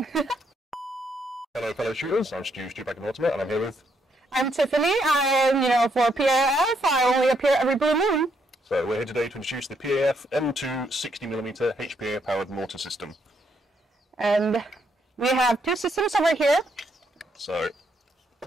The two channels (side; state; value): both; normal; correlation 0.74